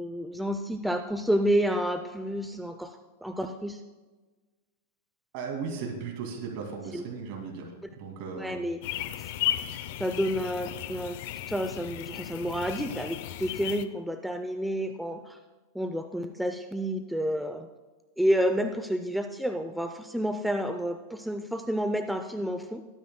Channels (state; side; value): normal; both; correlation 0.70